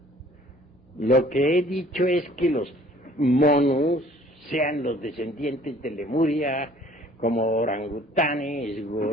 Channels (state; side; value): normal; both; correlation 0.54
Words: Lo que he dicho es que los monos, sean los descendientes de Lemuria, como orangutanes,